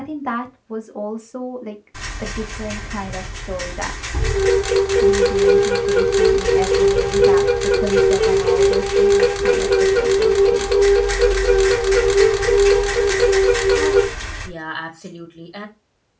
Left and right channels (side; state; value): both; identical; correlation 1.00